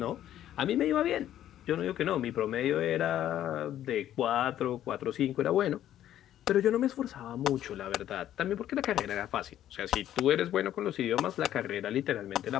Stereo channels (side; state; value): right; quieter; 11.8 dB